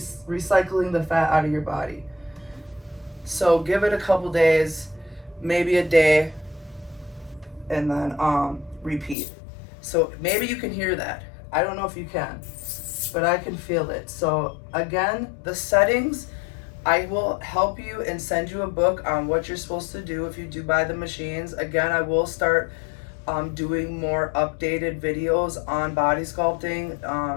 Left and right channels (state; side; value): drops out; right; at 9.2 s